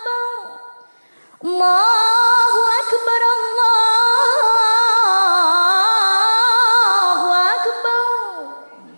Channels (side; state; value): both; inverted; correlation -1.00